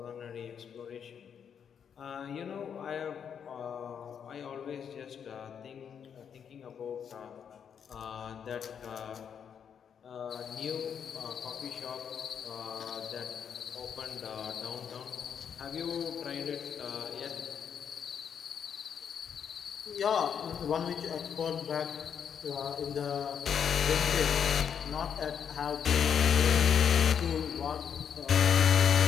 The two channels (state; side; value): quieter; right; 7.7 dB